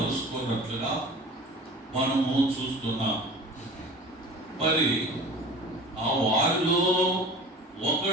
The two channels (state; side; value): normal; both; correlation 0.40